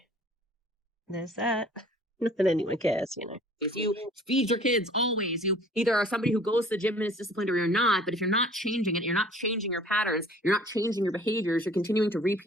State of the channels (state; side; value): normal; both; correlation 0.51